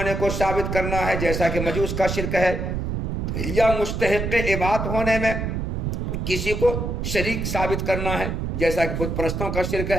کو ثابت کرنا ہے جیسا کہ مجوس کا شرک ہے، یا مستحق عبادت ہونے میں کسی کو شریک ثابت کرنا ہے جیسا کہ بت پرستوں کا شرک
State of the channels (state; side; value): noise; right; rumble, 2 dB below the sound